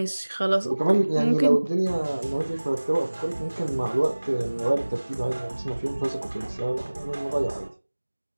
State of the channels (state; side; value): inverted; both; correlation -1.00